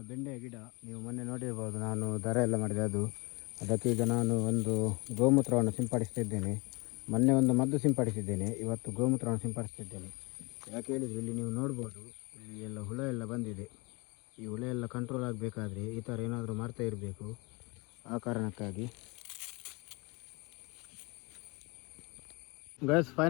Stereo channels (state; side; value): quieter; right; 27.3 dB